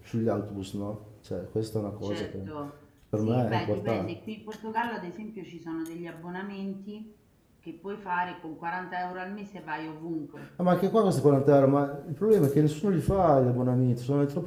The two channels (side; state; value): both; identical; correlation 1.00